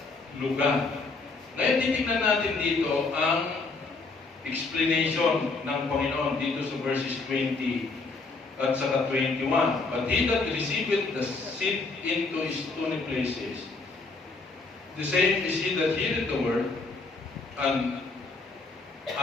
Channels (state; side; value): quieter; right; 3.8 dB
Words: lugar. Ngayon, titignan natin dito ang explanation ng Panginoon dito sa verses 20 at saka 21. But he that receiveth the seed into his stony places, the same is he that heareth the word, and